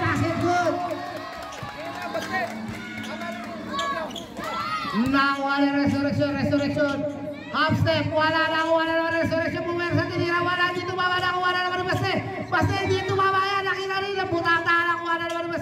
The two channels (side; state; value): both; identical; correlation 1.00